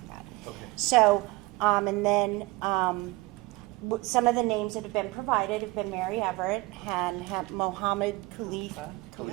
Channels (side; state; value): left; quieter; 21.4 dB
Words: that. Okay. So, and then some of the names that have been provided have been Mary Everett and Mohammed Khalifa.